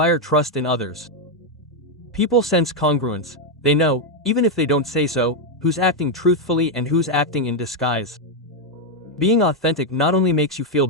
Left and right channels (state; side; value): normal; both; correlation 0.02